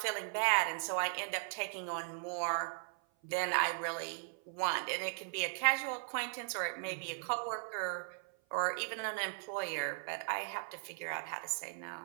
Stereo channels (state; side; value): silent; left; 53 dB below the other